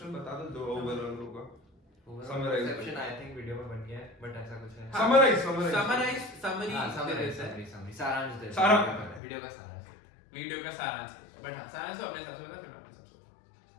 बता दो जो ओवरऑल होगा। Summarize perception I think video में बन गया है, बट ऐसा कुछ है। समरी हाँ, समरी समरी सारांश दे सारा- वीडियो का सारांश देते हैं। वीडियो का सारांश बट हाँ सारांश तो अपने हिसाब से बता फिर मैं अपने हिसाब से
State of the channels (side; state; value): right; drops out; at 9.2 s